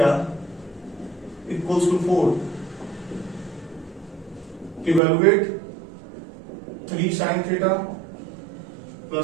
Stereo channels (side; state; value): left; drops out; at 5.0 s